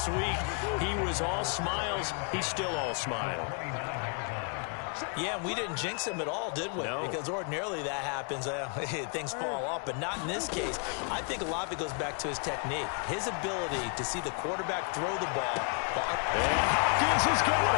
week. He was all smiles. He's still all smile. Yeah, and we didn't jinx him at all, did we? No. Because ordinarily that happens. Things fall off, but not in this case. I think a lot of it goes back to his technique, his ability to see the quarterback throw the ball. And Hopkins has got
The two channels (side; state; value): right; quieter; 39.8 dB